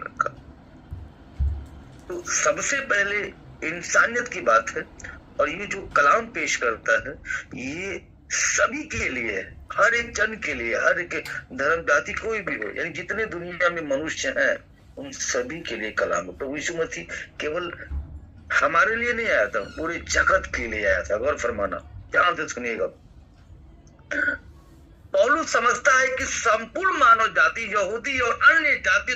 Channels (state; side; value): identical; both; correlation 1.00